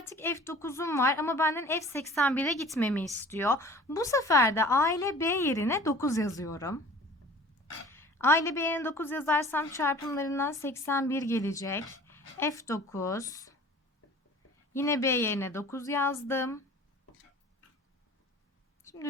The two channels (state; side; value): normal; both; correlation 0.46